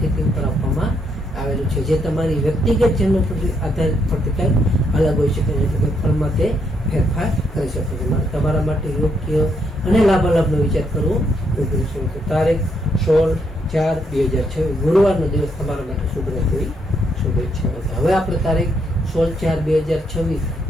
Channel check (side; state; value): both; normal; correlation 0.75